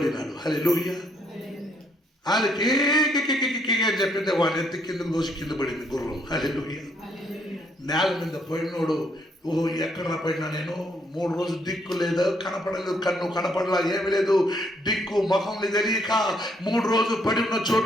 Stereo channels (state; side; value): normal; both; correlation 0.71